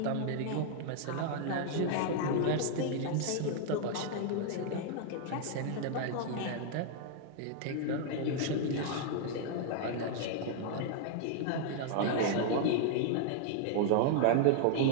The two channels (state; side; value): different; both; correlation 0.00